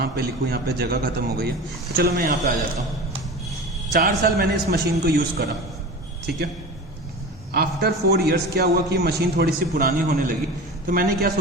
पे लिखूँ, यहाँ पे जगह खत्म हो गई है, तो चलो मैं यहाँ पे आ जाता हूँ। 4 साल मैंने इस मशीन को यूज करा, ठीक है। आफ्टर 4 इयर्स क्या हुआ कि मशीन थोड़ी सी पुरानी होने लगी, तो मैंने क्या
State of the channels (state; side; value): normal; both; correlation 0.32